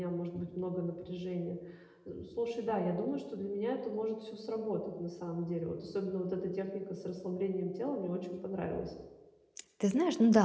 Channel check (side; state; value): both; identical; correlation 1.00